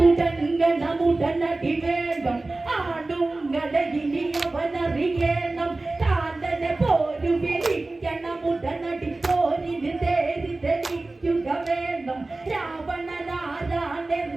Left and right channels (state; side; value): quieter; left; 3.1 dB